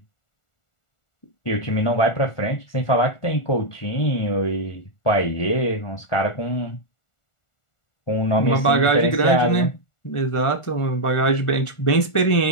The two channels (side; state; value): right; late; 1.4 ms